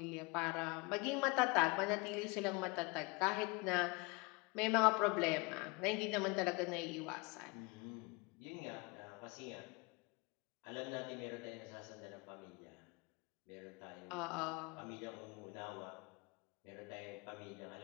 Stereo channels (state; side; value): quieter; right; 27.8 dB